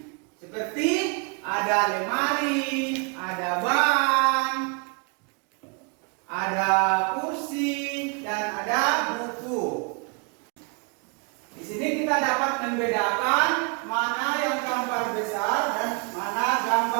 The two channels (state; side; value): quieter; left; 34.0 dB